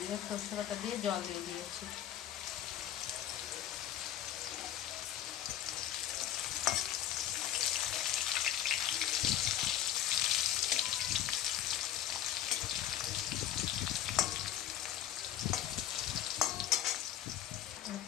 সর্ষে বাটা দিয়ে জল দিয়ে দিয়েছি।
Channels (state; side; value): quieter; right; 11.4 dB